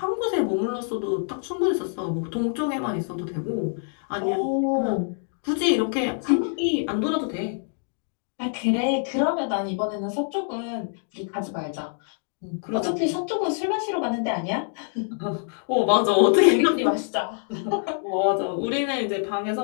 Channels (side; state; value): right; silent; 58 dB below the other